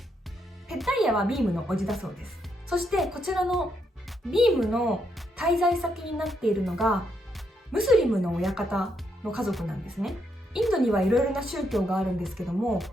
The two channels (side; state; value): both; normal; correlation 0.78